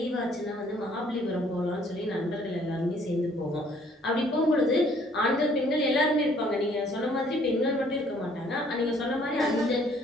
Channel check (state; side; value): normal; both; correlation 0.61